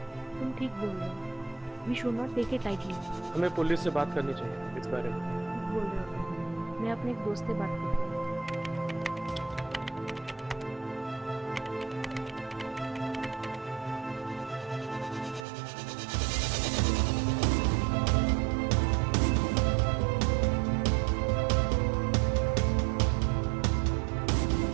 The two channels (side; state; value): left; drops out; at 15.5 s